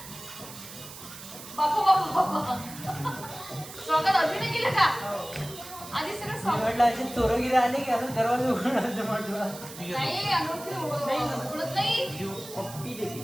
स्वागत अजून नाही केलं का? आधी सगळं स्वागत असे चोरगिरी आले की आता दरवाजा उघडायचं म्हटलं. नाही अनोळखी उघडत नाही.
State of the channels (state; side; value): noise; right; hiss, 14 dB below the sound